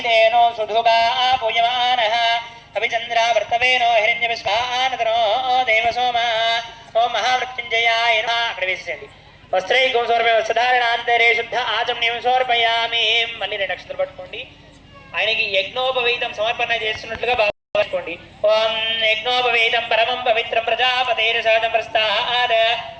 సుధుగా పూయమానః అభిచంద్రా వర్తవేనో హిరణ్యవిశ్వానతనో దేవసోమ ఓం మహామృత్యుంజయాయ నమః. అక్కడ వేసేయండి. వస్త్రైకం సమర్పయ వస్త్రధారణాంతరే శుద్ధ ఆచమనీయం సమర్పయామి. మళ్ళీ 2 అక్షతలు పట్టుకోండి. ఆయనకి యజ్ఞోపవీతం సమర్పణ చేస్తున్నట్లుగా భావించుకోండి. ఓం యజ్ఞోపవీతం పరమం పవిత్రం ప్రజాపతేన సహజం ప్రస్థాద్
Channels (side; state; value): both; identical; correlation 1.00